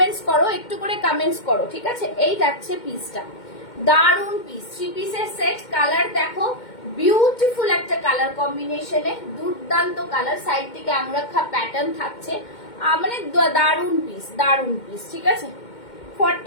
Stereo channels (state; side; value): late; right; 2.1 ms